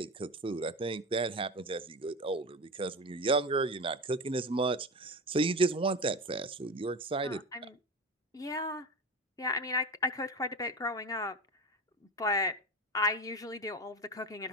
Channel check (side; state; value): both; normal; correlation 0.25